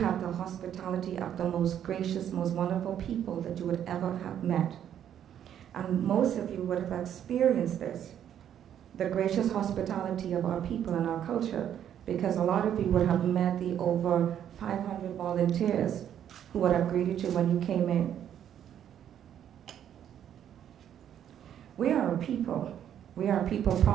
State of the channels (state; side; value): quieter; left; 9.9 dB